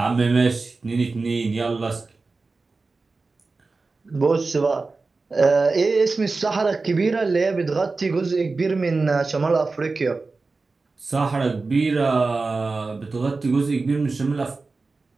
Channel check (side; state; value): left; quieter; 3.8 dB